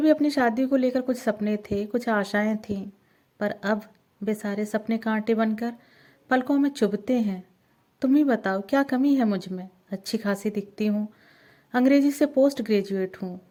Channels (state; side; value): identical; both; correlation 1.00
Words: अपनी शादी को लेकर कुछ सपने थे, कुछ आशाएं थीं, पर अब वे सारे सपने कांटे बनकर पलकों में चुभते हैं। तुम ही बताओ, क्या कमी है मुझ में। अच्छी खासी दिखती हूँ, अंग्रेजी से पोस्ट ग्रेजुएट हूँ,